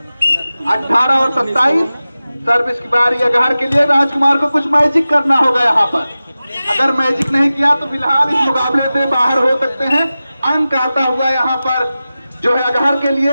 18 और 27। सर्विस की बारी अगहर के लिए। राजकुमार को कुछ मैजिक करना होगा यहाँ पर, अगर मैजिक नहीं किया तो फिलहाल इस मुकाबले से बाहर हो सकते हैं। अंक आता हुआ यहाँ पर जो है अगहर के लिए,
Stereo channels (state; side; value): inverted; both; correlation -0.95